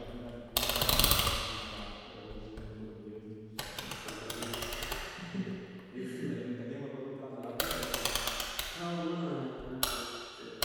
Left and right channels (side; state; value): both; identical; correlation 1.00